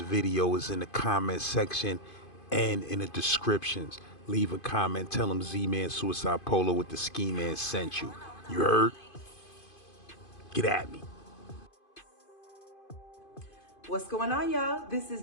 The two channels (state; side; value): late; right; 2.5 ms